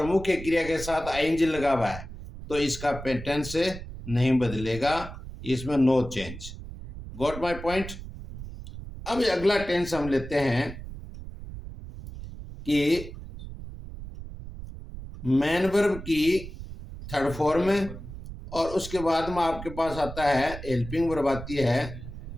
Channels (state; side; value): noise; right; rumble, 11 dB below the sound